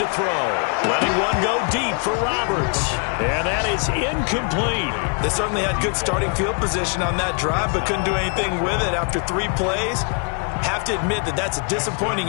throw. Letting one go deep for Roberts. And that is incomplete. They certainly had good starting field position on that drive, but couldn't do anything with it after 3 plays. Have to admit that that's a disappointing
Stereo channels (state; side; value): quieter; right; 39.2 dB